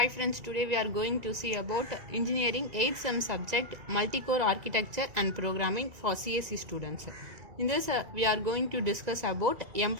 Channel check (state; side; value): late; left; 1.9 ms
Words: friends, today we are going to see about engineering 8th sem subject multi-core architecture and programming for CSE students. In this we are going to discuss about